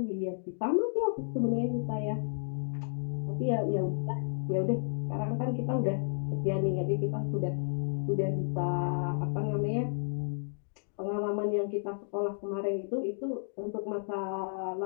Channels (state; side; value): silent; right; digital silence